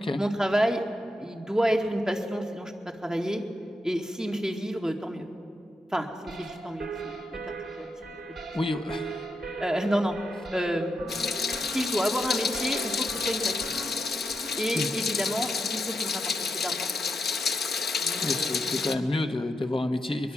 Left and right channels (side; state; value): both; normal; correlation 0.84